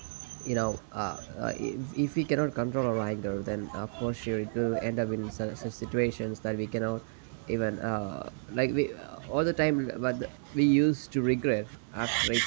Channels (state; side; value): silent; left; digital silence